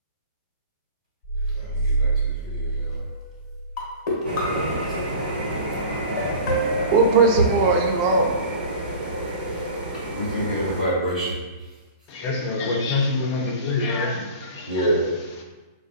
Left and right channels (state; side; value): inverted; both; correlation -0.39